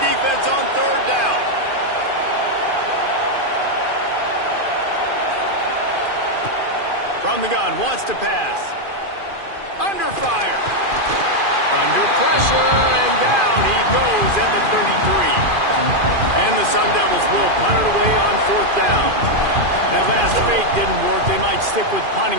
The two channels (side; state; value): left; late; 2.5 ms